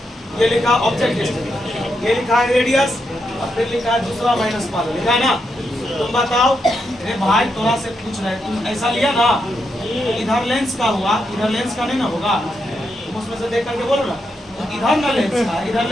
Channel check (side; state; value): both; normal; correlation 0.83